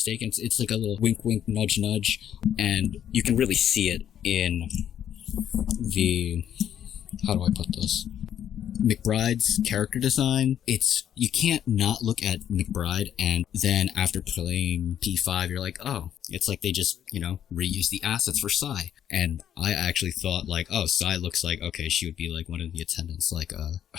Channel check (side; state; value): right; quieter; 9.9 dB